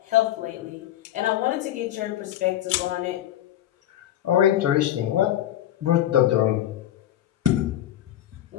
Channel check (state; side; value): quieter; right; 12.4 dB